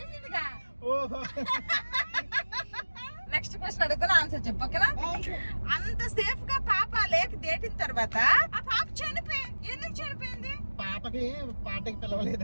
ఓహో. నెక్స్ట్ క్వశ్చన్ అడుగుతున్నా, ఆన్సర్ చెప్పు, ఓకేనా? అంత సేఫ్ గా పాప లేక దేటిన తర్వాత ఆ పాప ఎందుకు చనిపోయింది? పాపకి పార్టీకి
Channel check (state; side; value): inverted; both; correlation -1.00